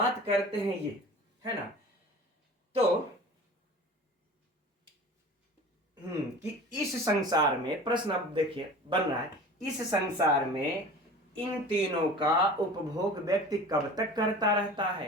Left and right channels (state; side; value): normal; both; correlation 0.39